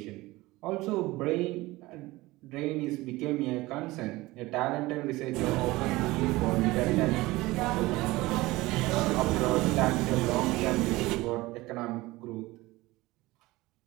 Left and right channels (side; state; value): left; quieter; 19.9 dB